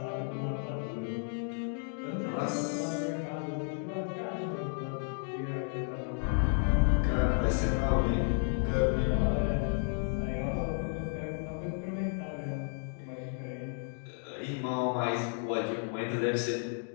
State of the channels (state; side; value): silent; right; 56 dB below the other